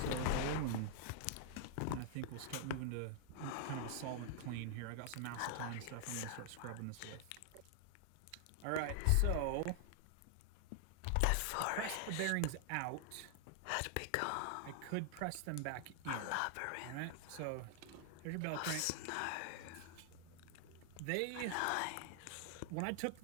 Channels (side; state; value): both; different; correlation 0.00